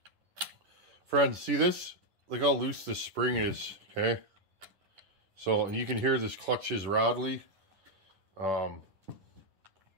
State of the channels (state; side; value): late; left; 10 ms